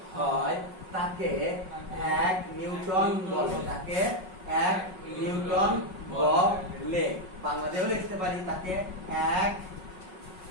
তাকে 1 নিউটন বলে। বাংলাতেও লিখতে পারি তাকে 1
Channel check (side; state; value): left; late; 5.4 ms